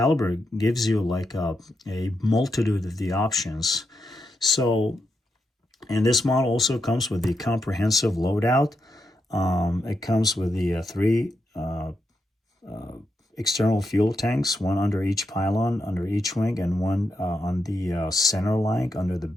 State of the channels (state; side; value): normal; both; correlation 0.84